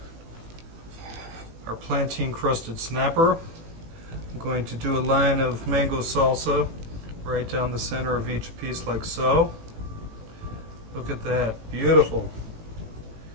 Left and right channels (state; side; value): late; left; 18 ms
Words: our plantain crusted snapper. I'm going to do a line of mango salsa right down the center of each piece like so. Look at that, beautiful.